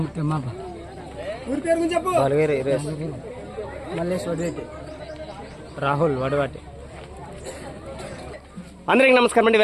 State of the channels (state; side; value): identical; both; correlation 1.00